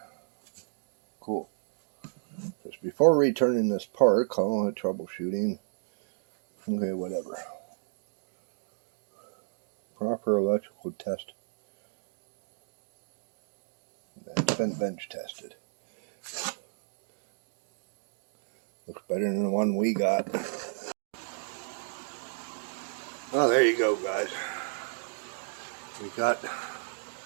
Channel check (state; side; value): silent; left; digital silence